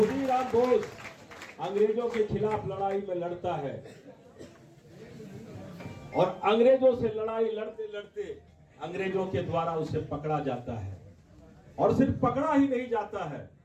बोस अंग्रेजों के खिलाफ लड़ाई में लड़ता है, और अंग्रेजों से लड़ाई लड़ते लड़ते अंग्रेजों के द्वारा उसे पकड़ा जाता है। और सिर्फ पकड़ा ही नहीं जाता है,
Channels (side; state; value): both; identical; correlation 1.00